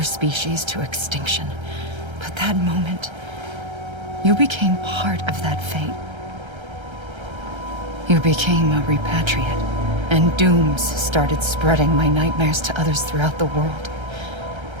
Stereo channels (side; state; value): left; late; 1.3 ms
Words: species to extinction. But that moment, you became part of that fate. You became a repatriate, and dooms started spreading my nightmares to others throughout the world.